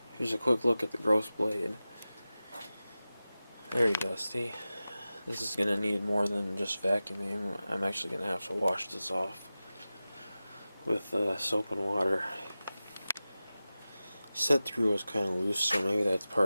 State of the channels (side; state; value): both; inverted; correlation -0.95